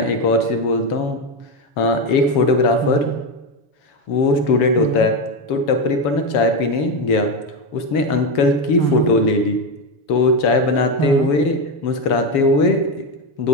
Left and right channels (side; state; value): right; late; 7.0 ms